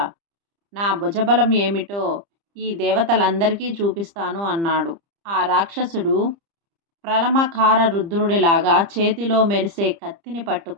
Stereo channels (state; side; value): late; left; 30 ms